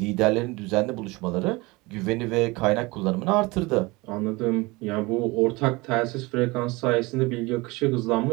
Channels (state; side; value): quieter; left; 23.6 dB